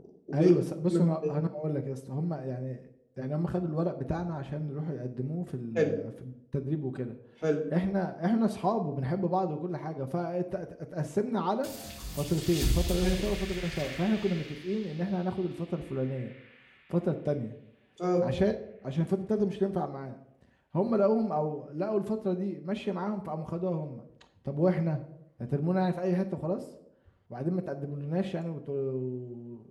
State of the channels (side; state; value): both; identical; correlation 1.00